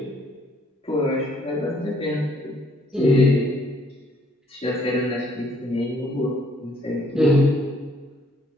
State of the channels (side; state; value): both; normal; correlation 0.65